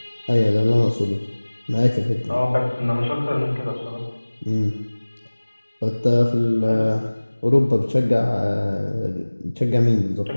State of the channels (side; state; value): both; inverted; correlation -1.00